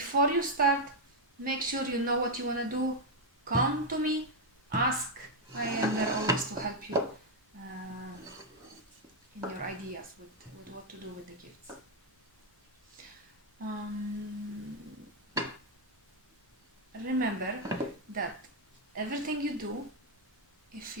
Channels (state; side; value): normal; both; correlation 0.00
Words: you start, make sure you know what you want to do. Come to me, ask. I am there always to help you in your ideas with what to do with the gifts. Remember that everything you do, if